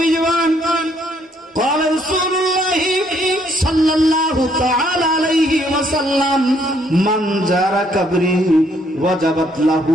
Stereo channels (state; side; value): normal; both; correlation 0.68